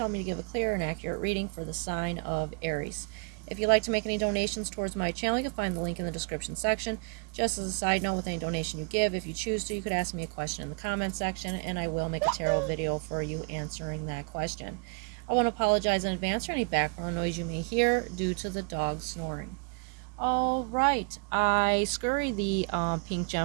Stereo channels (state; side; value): quieter; left; 35.5 dB